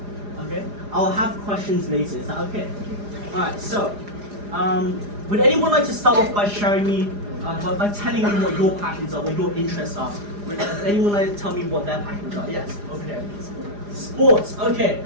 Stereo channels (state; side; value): late; left; 4.9 ms